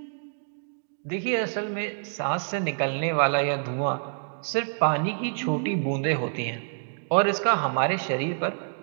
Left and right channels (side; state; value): left; silent; digital silence